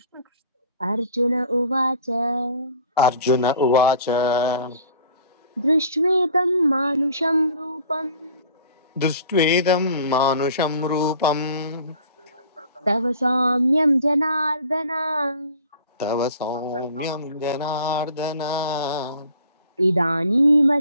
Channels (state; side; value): inverted; both; correlation -0.49